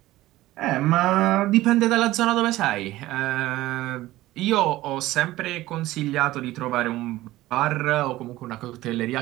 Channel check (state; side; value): quieter; left; 16.7 dB